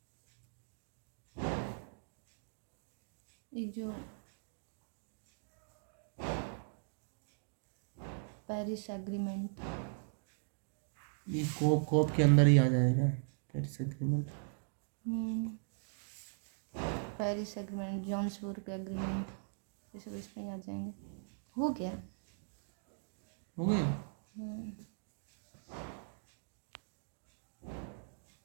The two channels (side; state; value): left; silent; digital silence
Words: एक जो पेरिस एग्रीमेंट, ये कॉप के अंदर ही आ जाएगा, Paris agreement. Paris agreement, जॉन्सबर्ग agreement, ये सब इसमें ही आ जाएंगे। हो गया। हो गया।